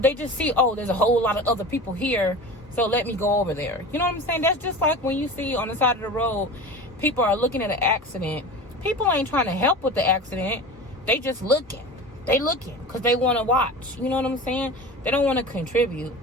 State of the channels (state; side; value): normal; both; correlation 0.33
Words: just see, oh, there's a whole lot of other people here, so let me go over there. You know what I'm saying? That's just like when you see on the side of the road, people are looking at an accident. People ain't trying to help with the accident. They just looking. They looking because they want to watch. You know what I'm saying? They don't want to contribute.